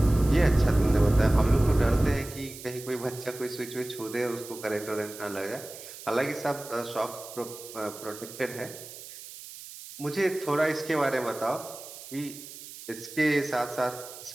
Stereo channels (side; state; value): right; noise; hiss, 14 dB below the sound